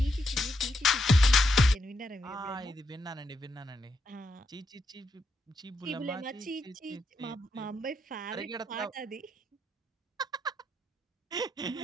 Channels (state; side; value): normal; both; correlation 0.81